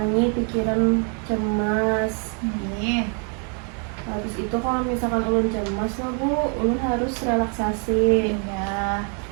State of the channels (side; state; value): left; quieter; 39.9 dB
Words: pikiran cemas. Nih. Habis itu kalau misalkan ulun cemas lah Bu, ulun harus relaksasi. Iya.